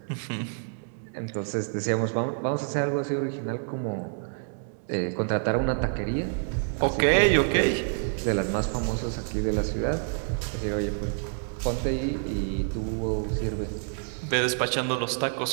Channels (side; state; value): left; silent; 60 dB below the other